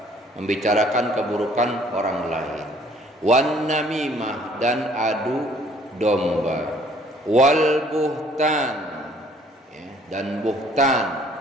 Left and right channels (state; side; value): normal; both; correlation 0.59